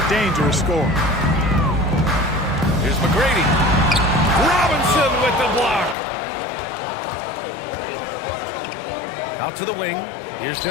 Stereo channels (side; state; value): right; drops out; at 6.0 s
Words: dangerous scorer. Here's McGrady. Robinson with the block. Out to the wing. Here's